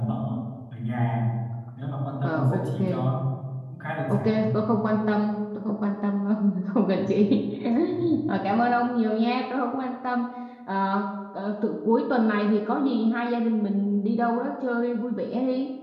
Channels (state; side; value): identical; both; correlation 1.00